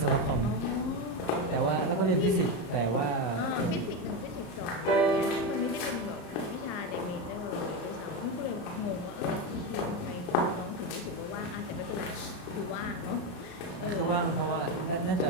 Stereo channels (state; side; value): late; right; 34 ms